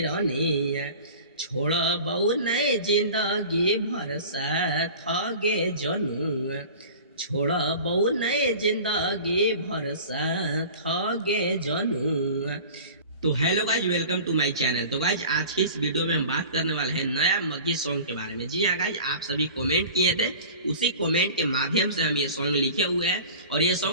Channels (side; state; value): both; inverted; correlation -0.40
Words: रनिया छोड़बौ नहीं जिंदगी भर साथ गे जनुआ छोड़बौ नहीं जिंदगी भर साथ गे जनुआ। तो hello guys, welcome to my channel. तो गाइज आज की इस वीडियो में हम बात करने वाले हैं नया मग्गी सॉन्ग के बारे में। जी हाँ गाइज, आप सभी कमेंट किए थे, उसी कमेंट के माध्यम से हम ये सॉन्ग लिखे हुए हैं और ये